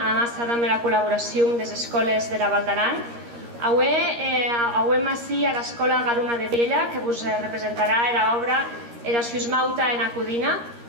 la col·laboració de les escoles de la Val d'Aran. Avui ací a l'Escola Garuna de Viella, que vos representarà l'obra Era Suismauta en Acudina.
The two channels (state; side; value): late; left; 13 ms